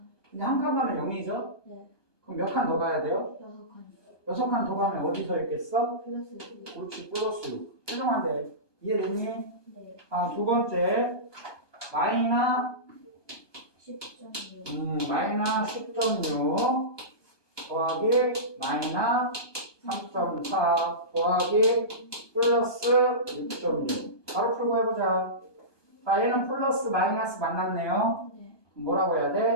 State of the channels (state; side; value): late; right; 1.2 ms